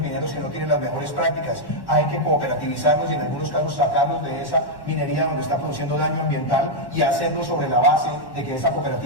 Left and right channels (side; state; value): right; late; 1.1 ms